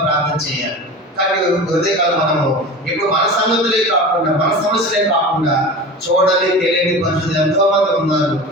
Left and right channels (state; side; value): normal; both; correlation 0.33